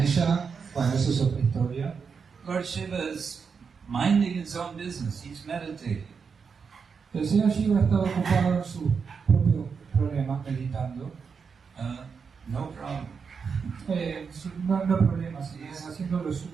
bueno, eso es otra historia. Lord Shiva is minding his own business, he's meditating. El señor Shiva estaba ocupado en su propio problema, meditando. No problem. No problema, sino haciendo lo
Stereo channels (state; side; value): quieter; left; 5.8 dB